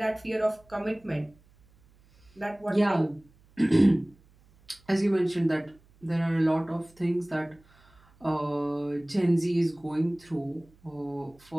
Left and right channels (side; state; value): right; noise; hum, 30 dB below the sound